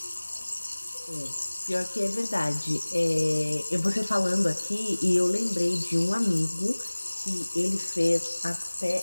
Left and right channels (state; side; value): inverted; both; correlation -1.00